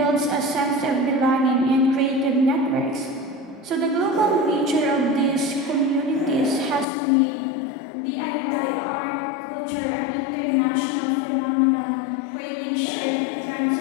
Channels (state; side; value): drops out; right; at 6.9 s